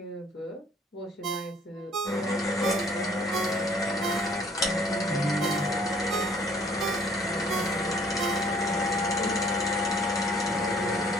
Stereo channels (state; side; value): normal; both; correlation 0.58